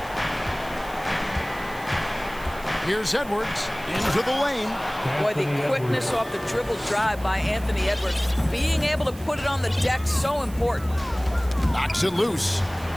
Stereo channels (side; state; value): right; noise; hiss, 20 dB below the sound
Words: Here's Edwards into the lane. Boy, the quickness off the dribble drive by Anthony Edwards. Being able to put it on the deck, so important. Knocks it loose.